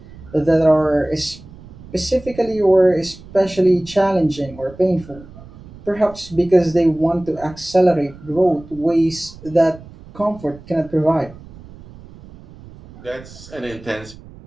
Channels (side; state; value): right; noise; rumble, 19 dB below the sound